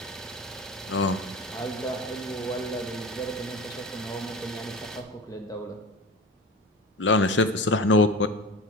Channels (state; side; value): normal; both; correlation 0.31